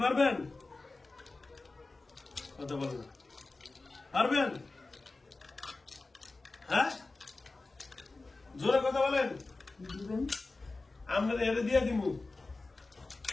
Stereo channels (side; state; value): right; quieter; 3.4 dB